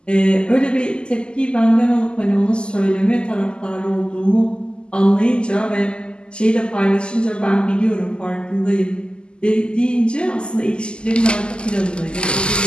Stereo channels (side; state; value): right; late; 0.049 ms